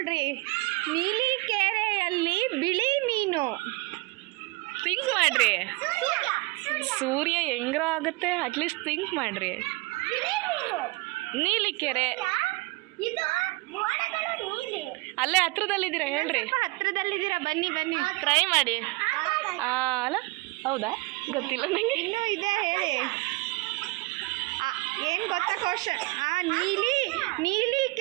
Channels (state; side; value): quieter; left; 25.0 dB